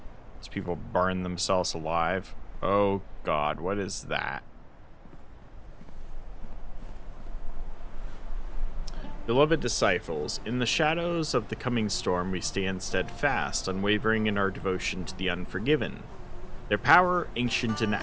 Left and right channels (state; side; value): identical; both; correlation 1.00